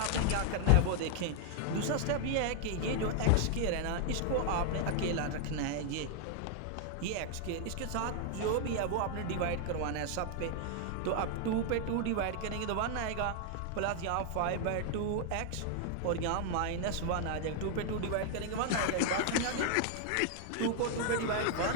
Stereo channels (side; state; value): both; different; correlation 0.00